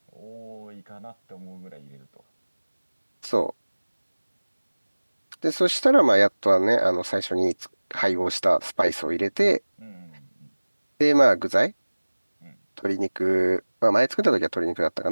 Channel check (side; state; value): both; inverted; correlation -1.00